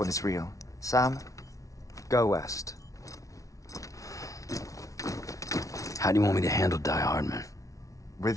is real. Sam, go west. How do you want me to handle Die Hardman?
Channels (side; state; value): right; late; 0.16 ms